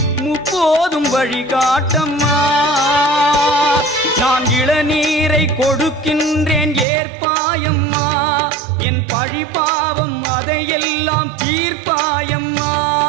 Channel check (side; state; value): left; drops out; at 6.9 s